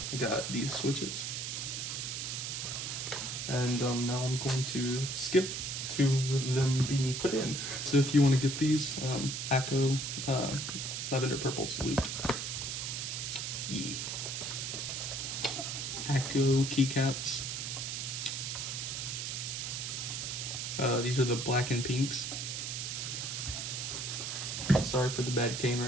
got these switches. And now I'm going to skip to them being put in. So if you want to get these, AKKO Lavender Purple's looped. AKKO Keycaps. These are the black and pinks. Sorry for the bad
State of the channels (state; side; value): noise; right; hiss, 3 dB below the sound